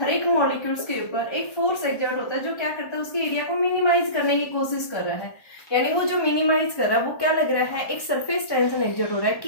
एक मॉलिक्यूल्स के ऊपर एक फोर्स एक्सर्ट होता है जो क्या करता है, उसके एरिया को मिनिमाइज करने की कोशिश कर रहा है। यानी वो जो मिनिमाइज कर रहा है वो क्या लग रहा है, एक सरफेस टेंशन एक्सर्ट हो रहा है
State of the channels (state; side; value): late; right; 1.1 ms